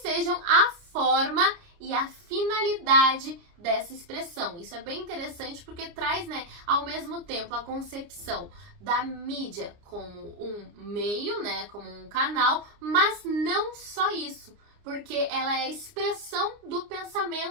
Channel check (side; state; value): left; late; 29 ms